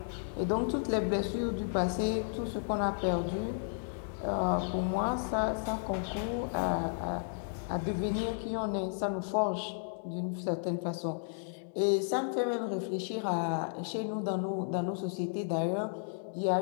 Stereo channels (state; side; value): silent; right; digital silence